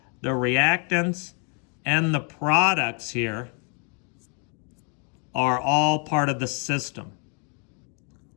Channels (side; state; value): right; quieter; 37.7 dB